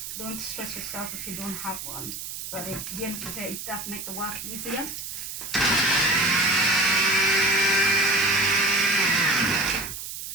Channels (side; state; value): right; noise; hiss, 8 dB below the sound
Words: Don't stress yourself if you don't have one. But at the end of the day, it does make the work easier.